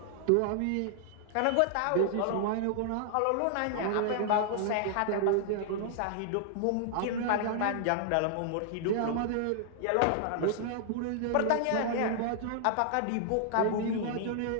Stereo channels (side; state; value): both; different; correlation -0.01